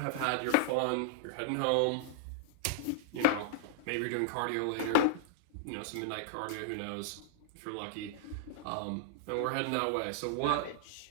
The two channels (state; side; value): different; both; correlation -0.02